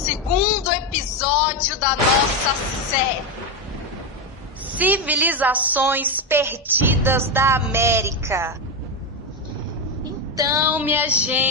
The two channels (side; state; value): both; normal; correlation 0.10